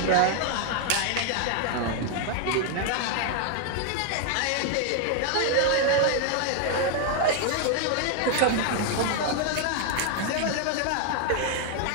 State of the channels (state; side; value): different; both; correlation 0.00